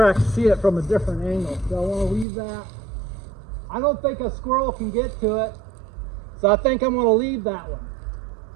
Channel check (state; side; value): drops out; left; at 2.2 s